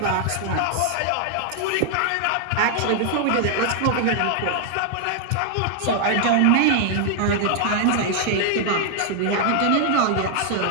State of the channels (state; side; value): different; both; correlation 0.00